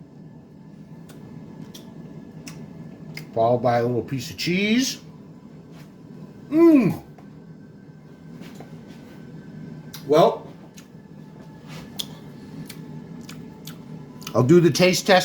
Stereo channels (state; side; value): identical; both; correlation 1.00